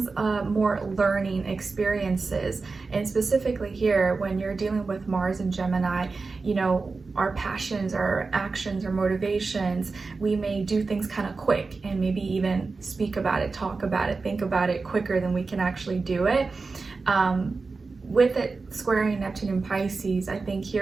more learning experiences. And specifically here, when you're dealing with Mars in Gemini, our passions, our actions, our motivations, we may do things kind of quick and maybe even speak about it, talk about it, think about it quicker than we can actually do it. With it squaring Neptune and Pisces, I think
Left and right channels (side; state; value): left; quieter; 4.1 dB